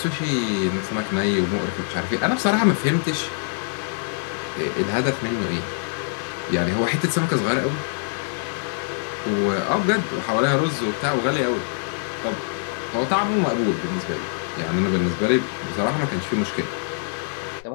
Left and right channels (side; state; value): right; silent; 63 dB below the other